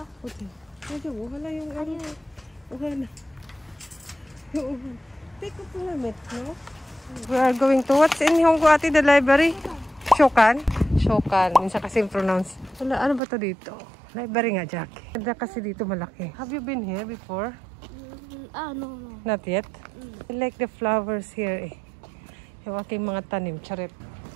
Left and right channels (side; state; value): left; drops out; at 13.2 s